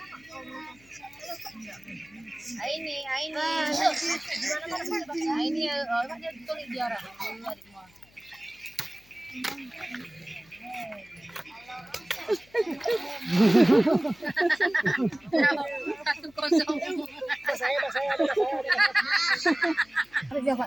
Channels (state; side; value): noise; left; hum, 29 dB below the sound